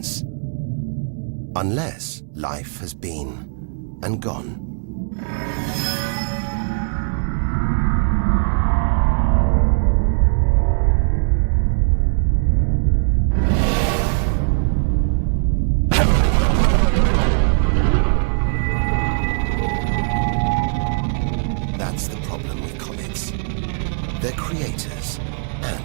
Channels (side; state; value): left; silent; digital silence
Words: Unless life has been and gone. That's the problem with comets. They're creators